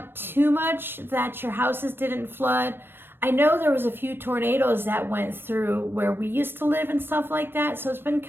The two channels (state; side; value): late; left; 0.10 ms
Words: too much, that your houses didn't flood. I know there was a few tornadoes that went through where we used to live and stuff like that, so it's been